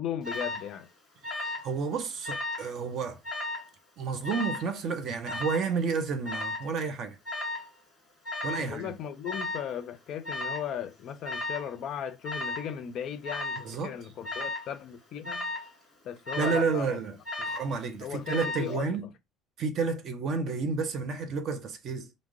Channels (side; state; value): both; normal; correlation 0.38